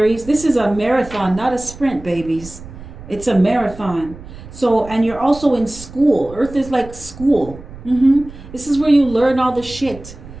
This is a marathon, not a sprint, babies. It's a marathon. So, and you're also in school. Earth is like school. This is where you learn all the shit,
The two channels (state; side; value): noise; right; rumble, 16 dB below the sound